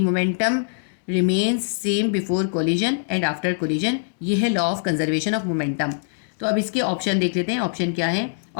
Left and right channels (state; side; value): silent; right; digital silence